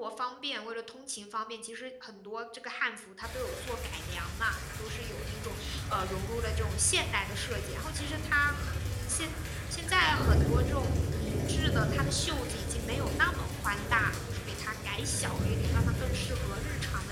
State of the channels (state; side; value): identical; both; correlation 1.00